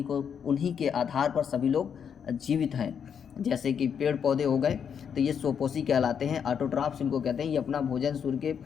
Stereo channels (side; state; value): right; quieter; 7.5 dB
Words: के आधार पर सभी लोग जीवित हैं। जैसे कि पेड़ पौधे हो गए तो ये स्वपोषी कहलाते हैं, ऑटोट्रॉप्स इनको कहते हैं। ये अपना भोजन सूर्य के